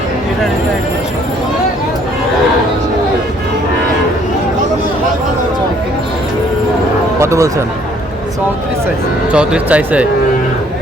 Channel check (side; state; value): both; normal; correlation 0.62